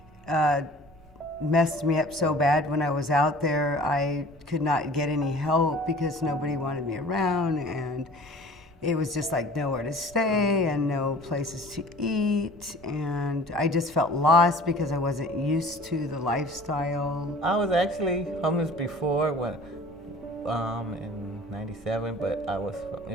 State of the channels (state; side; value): normal; both; correlation 0.46